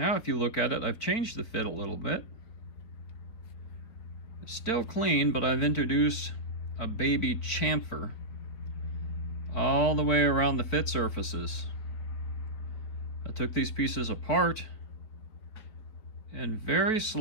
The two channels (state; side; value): late; right; 4.5 ms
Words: if you look at it, I've changed the fit a little bit. It's still clean, but I've introduced a baby chamfer all the way around the fit surfaces. I took these pieces apart and very